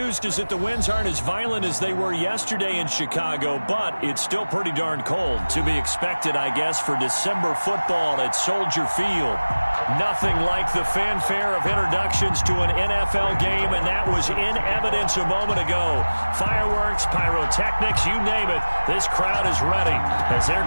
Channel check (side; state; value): both; inverted; correlation -1.00